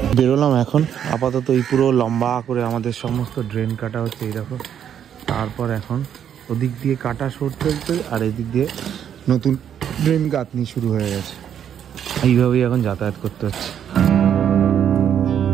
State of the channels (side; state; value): left; quieter; 9.1 dB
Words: বেরোলাম এখন আপাতত, এই পুরো লম্বা করে আমাদের সমস্ত ড্রেন কাটা হচ্ছে, এই দেখো। তারপর এখন ওদিক দিয়ে কাটা সরতে চলছে, আর এদিক দিয়ে নতুন ড্রেন গাঁথনি শুরু হয়ে গেছে। এইভাবেই এখন যাতায়াত করতে হচ্ছে।